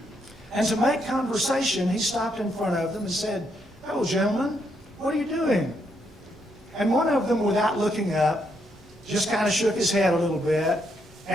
And to make conversation, he stopped in front of them and said, "Hello, gentlemen, what are you doing?" And one of them, without looking up, just kind of shook his head a little bit,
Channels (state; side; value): normal; both; correlation 0.77